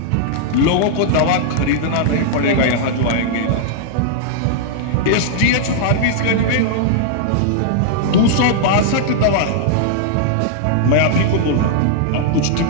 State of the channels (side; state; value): both; different; correlation -0.01